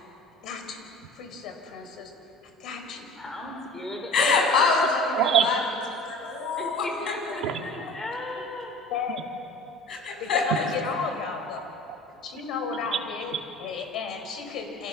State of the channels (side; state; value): both; normal; correlation 0.40